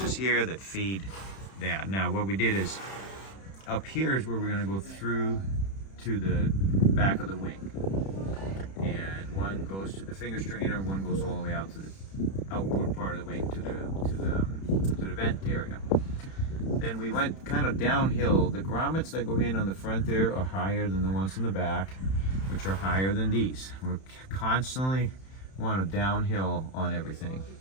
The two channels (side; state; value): right; late; 31 ms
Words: here that feed that. Now what we did is, up here is where we're going to go through to the back of the wing. And one goes to the finger strainer, one goes all the way out to the outboard part of the wing to the vent area. Then we went kind of downhill. The grommets that go in on the front there are higher than the ones in the back, which are higher than these. We're constantly want to downhill on everything.